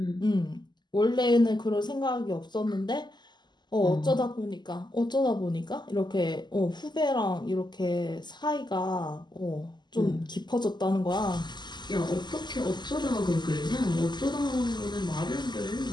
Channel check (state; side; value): late; right; 0.21 ms